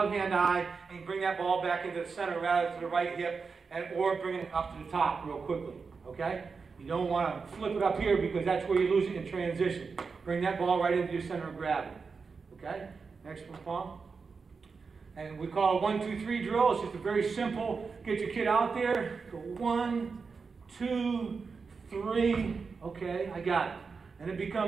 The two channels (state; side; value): quieter; left; 5.0 dB